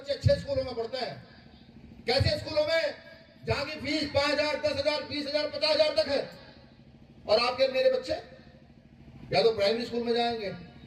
अच्छे स्कूलों में पढ़ते हैं कैसे स्कूलों में जहाँ की फीस 5,000 10,000 20,000 50,000 तक है और आपके मेरे बच्चे या तो प्राइमरी स्कूल में जाएंगे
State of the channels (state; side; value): identical; both; correlation 1.00